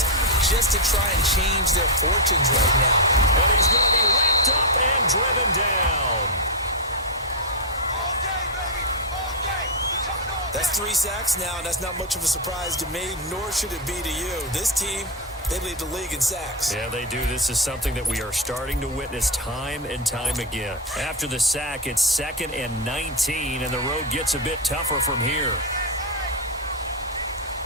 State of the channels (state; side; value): normal; both; correlation 0.03